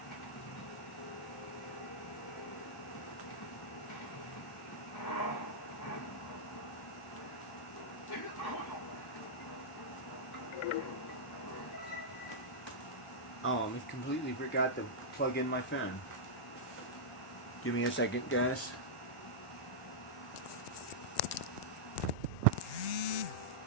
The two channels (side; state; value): both; normal; correlation -0.10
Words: Oh, I completely forgot to plug in my phone. Give me a second, guys.